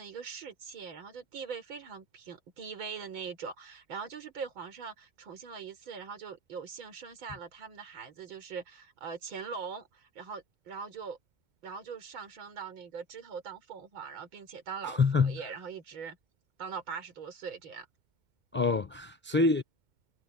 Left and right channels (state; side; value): late; left; 2.2 ms